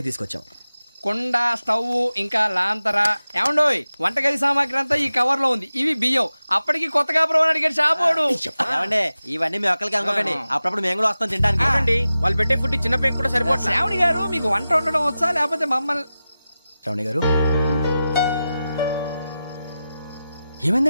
తీసుకొచ్చాం. కుండ, స్టవ్, ఇంకా లాంతర. ఏమండోయ్, వంటగది సామాగ్రి అంతా ఈ కవర్ లో ఉంది. ఇవి బియ్యం. అప్పటికి కొత్తగా బ్రౌన్ అడిగాడు షాపోడు. ఏమండి, ఇవన్నీ మీ ఒక్కరికి అనుకోకండి, అప్పుడప్పుడు మేము కూడా వస్తాం తింటానికి. చూడండి, వాళ్ళు పెట్టే ఫుడ్ చిన్న పేక్ కూడా సరిపోతుంది. శ్రావణి గారు, మీకు వంట వండడం వచ్చా, లేకపోతే మమ్మల్ని? శ్రావణి గారు,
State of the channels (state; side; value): inverted; both; correlation -0.93